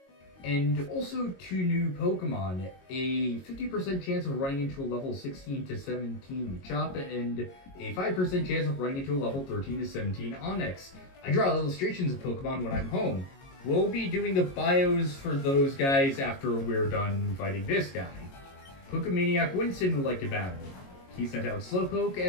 and also 2 new Pokemon, a 50% chance of running into a level 16 to 17 Machop, and a 5% chance of running into a level 13 to 17 Onix. I draw illustrations of Pokemon when I'm home. We'll be doing the bios for those guys after we're done fighting this guy. Pokemaniac Winston would like to battle. He sent out Slowpoke.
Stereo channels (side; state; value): right; late; 22 ms